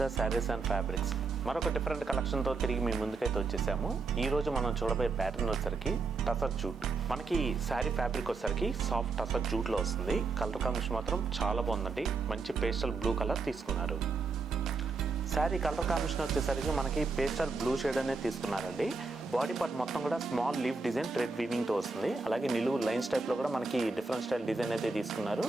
saris and fabrics. మరొక different కలెక్షన్తో తిరిగి మీ ముందుకైతే వచ్చేసాము. ఈరోజు మనం చూడబోయే ప్యాటర్న్ వచ్చేసరికి టసర్ జూట్. మనకి శారీ ఫ్యాబ్రిక్ వచ్చేసరికి సాఫ్ట్ టసర్ జూట్లో వస్తుంది. కలర్ కాంబినేషన్ మాత్రం చాలా బాగుందండి. మంచి పేస్టల్ బ్లూ కలర్ తీసుకున్నారు. శారీ కలర్ కాంబినేషన్ వచ్చేసరికి మనకి పేస్టల్ బ్లూ షేడ్ అనేది తీసుకున్నారండి. బాడీ పార్ట్ మొత్తం కూడా స్మాల్ లీఫ్ డిజైన్ థ్రెడ్ వీవింగ్తో వస్తుంది. అలాగే నిలువు లైన్స్ టైప్లో కూడా మనకి డిఫరెంట్ స్టైల్ డిజైన్ అయితే తీసుకున్నారు.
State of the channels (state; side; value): quieter; left; 4.1 dB